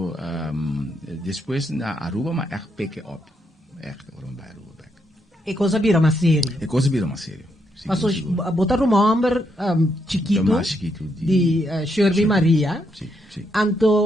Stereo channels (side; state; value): both; normal; correlation 0.78